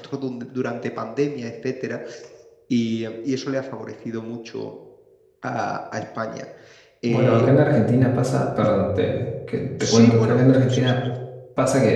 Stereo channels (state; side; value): identical; both; correlation 1.00